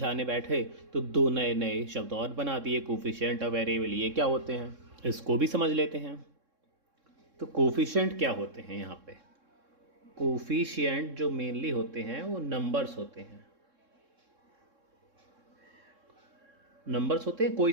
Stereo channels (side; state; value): left; late; 3.6 ms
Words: बैठे तो दो नए नए शब्द और बना दिए, कोफिशिएंट और वेरिएबल, ये क्या होते हैं? इसको भी समझ लेते हैं। तो कोफिशिएंट क्या होते हैं? यहाँ पे कोफिशिएंट जो मेनली होते हैं वो नंबर्स होते हैं। नंबर्स होते हैं, कोई